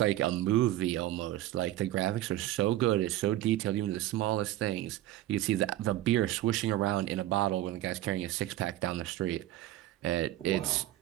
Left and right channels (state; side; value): quieter; left; 14.7 dB